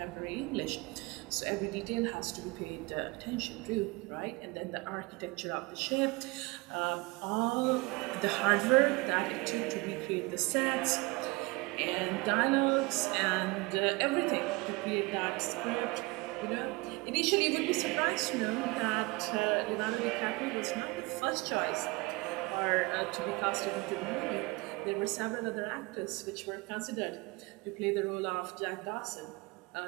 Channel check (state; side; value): quieter; left; 24.8 dB